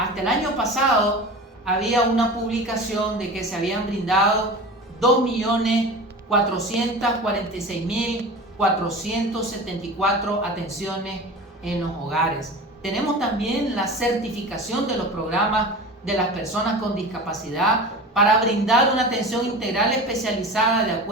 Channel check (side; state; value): both; normal; correlation 0.34